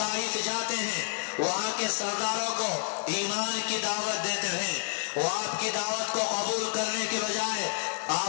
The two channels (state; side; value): silent; right; digital silence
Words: جاتے ہیں، وہاں کے سرداروں کو ایمان کی دعوت دیتے ہیں، وہ آپ کی دعوت کو قبول کرنے کے بجائے